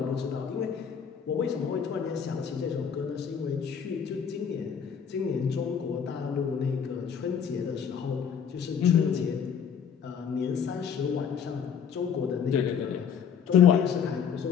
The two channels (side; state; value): right; quieter; 7.4 dB